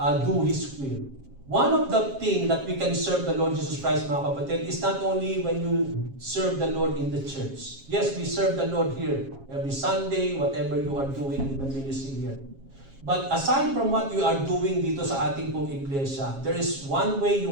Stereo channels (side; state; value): left; late; 7.4 ms